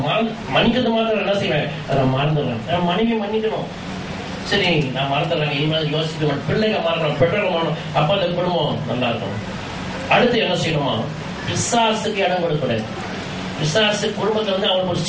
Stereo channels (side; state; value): both; identical; correlation 1.00